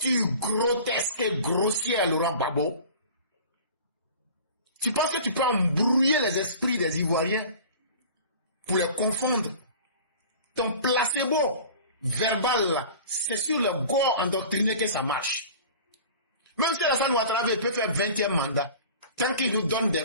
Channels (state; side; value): inverted; both; correlation -0.41